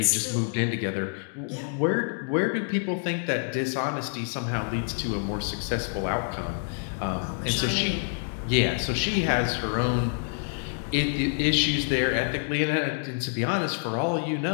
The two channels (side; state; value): right; silent; 60 dB below the other